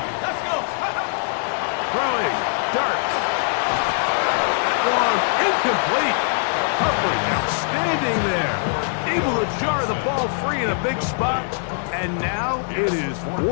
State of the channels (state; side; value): silent; right; digital silence